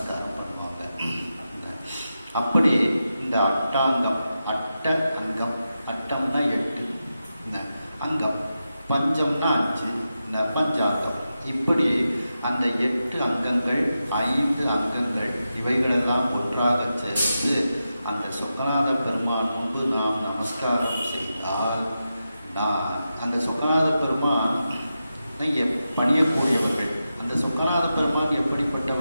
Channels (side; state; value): both; inverted; correlation -0.90